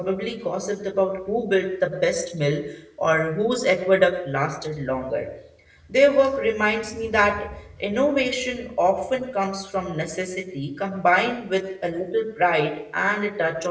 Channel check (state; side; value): identical; both; correlation 1.00